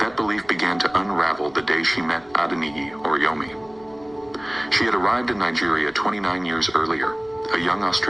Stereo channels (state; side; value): noise; left; rumble, 28 dB below the sound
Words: That belief began to unravel the day she met Adeniyi Oriyomi. She had arrived in Nigeria 29 years earlier, a young